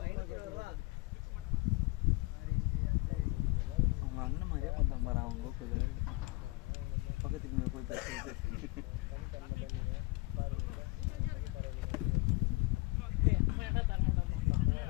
அவங்க அண்ணன் மாதிரியே பண்ணாம பாரு அவங்க லோக்கல் பக்கத்துக்கு போய் பேசுறது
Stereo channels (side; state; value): right; quieter; 23.3 dB